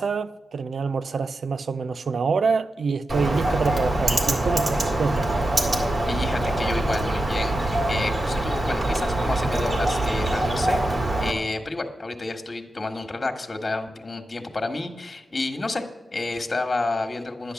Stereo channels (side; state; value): both; normal; correlation 0.90